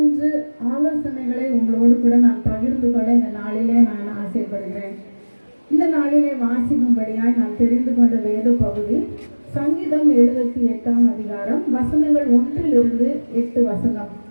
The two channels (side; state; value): both; inverted; correlation -1.00